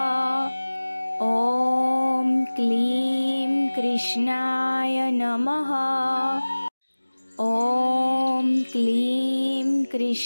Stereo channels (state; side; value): inverted; both; correlation -1.00